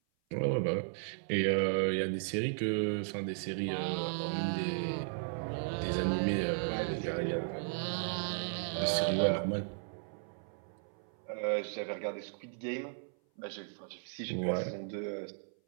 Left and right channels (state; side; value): silent; left; 54 dB below the other